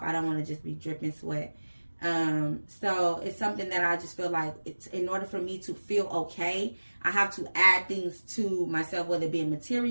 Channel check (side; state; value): both; inverted; correlation -1.00